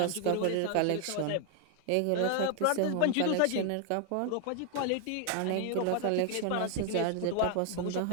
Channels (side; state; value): both; different; correlation 0.00